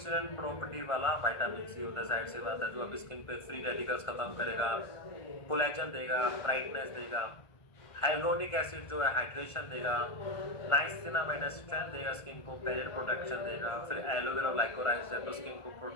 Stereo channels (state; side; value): late; right; 1.5 ms